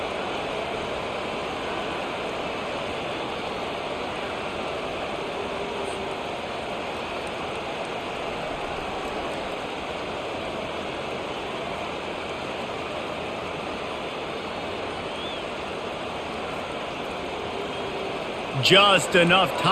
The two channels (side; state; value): both; identical; correlation 1.00